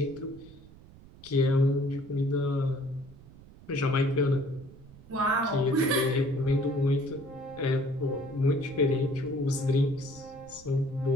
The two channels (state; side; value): noise; right; rumble, 21 dB below the sound